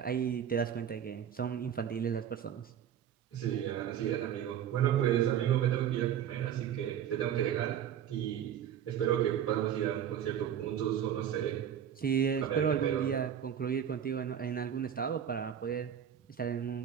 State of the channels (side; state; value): left; quieter; 9.3 dB